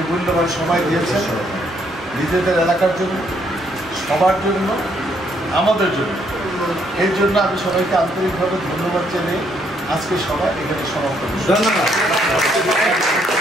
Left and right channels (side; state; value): both; normal; correlation 0.71